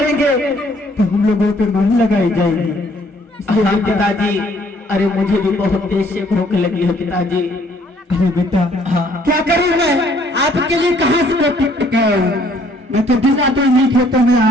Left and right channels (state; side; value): normal; both; correlation 0.62